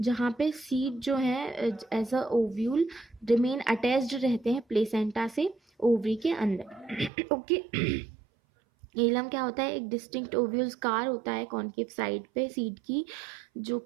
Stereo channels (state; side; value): drops out; left; at 7.1 s